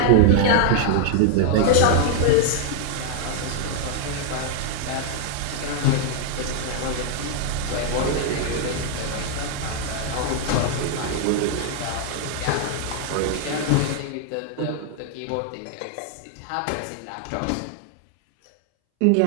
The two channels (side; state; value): both; different; correlation 0.00